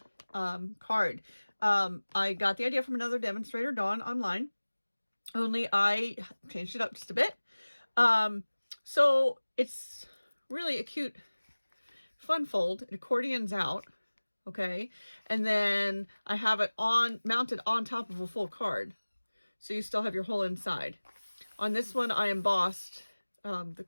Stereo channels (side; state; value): both; inverted; correlation -1.00